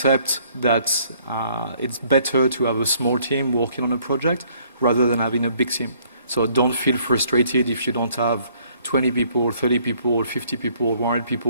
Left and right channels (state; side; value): inverted; both; correlation -0.63